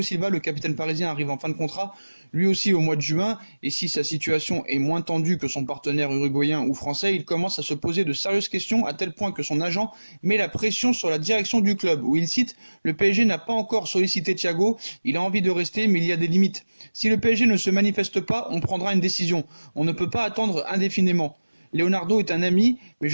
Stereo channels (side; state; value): both; inverted; correlation -1.00